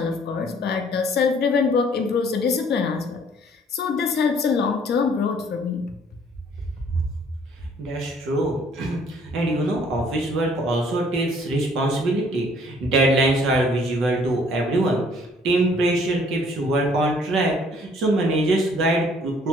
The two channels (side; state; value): both; normal; correlation 0.59